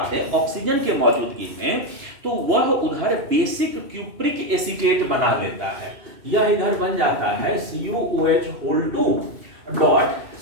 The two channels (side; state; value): left; late; 2.9 ms